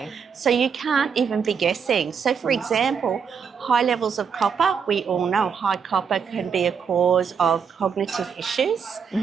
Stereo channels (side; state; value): left; quieter; 6.5 dB